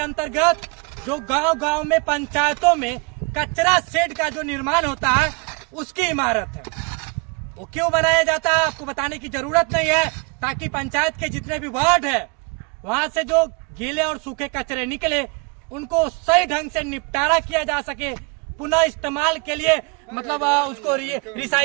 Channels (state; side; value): quieter; left; 31.3 dB